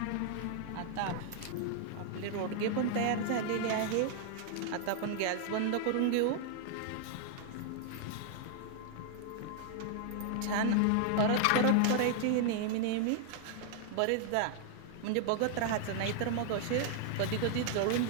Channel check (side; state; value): both; different; correlation 0.00